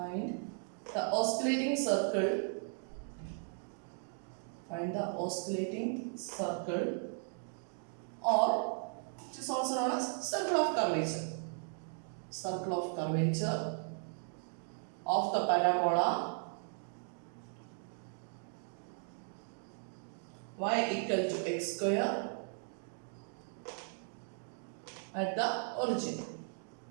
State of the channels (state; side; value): silent; left; 53 dB below the other